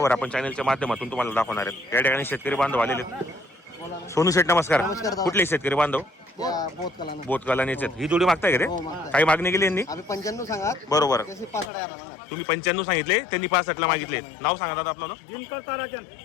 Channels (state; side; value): drops out; right; at 11.7 s